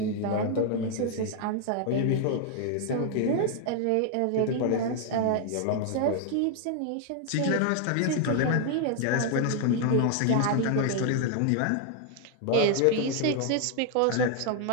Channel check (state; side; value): different; both; correlation 0.00